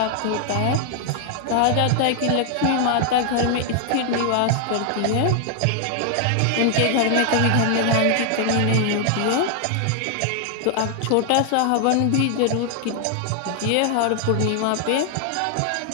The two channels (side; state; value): both; different; correlation 0.00